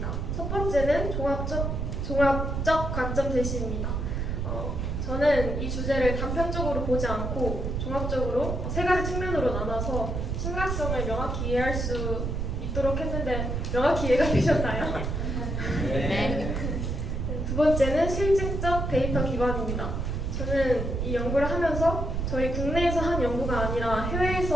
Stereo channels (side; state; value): right; noise; rumble, 2 dB below the sound